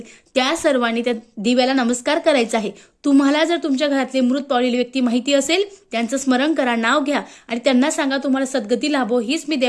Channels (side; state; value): both; identical; correlation 1.00